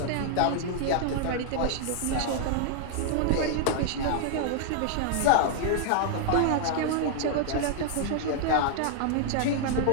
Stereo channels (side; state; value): both; different; correlation -0.01